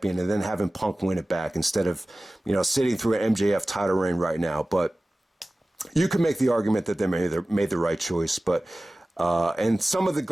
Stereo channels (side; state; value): both; normal; correlation 0.97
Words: and then having Punk win it back instead of, sitting through an MJF title reign right now. But you could make the argument that they made the right choice. But and some of the